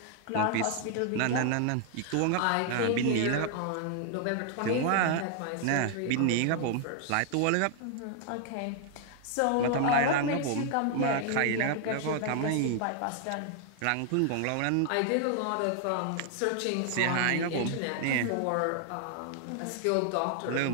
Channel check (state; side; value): different; both; correlation 0.00